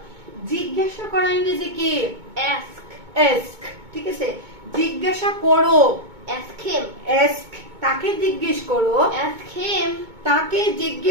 জিজ্ঞাসা করা ইংরেজি কি? Ask. ask. ঠিক আছে, জিজ্ঞাসা করো। Ask him. ask. তাকে জিজ্ঞেস করো। Ask him. তাকে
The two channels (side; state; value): left; late; 2.2 ms